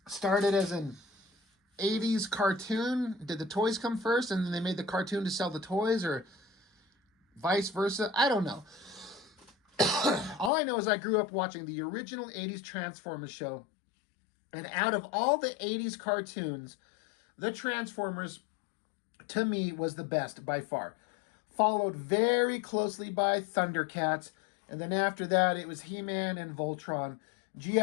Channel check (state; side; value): drops out; right; at 10.5 s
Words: Started as an 80s cartoon. Did the toys come first and then they made the cartoon to sell the toys, or vice versa? I don't know. All I know is I grew up watching the original 80s Transformers show, and out of all the 80s cartoons, the Transformers, to me, was the best by far. Followed very closely by Thundercats, and then after that, it was He-Man and Voltron.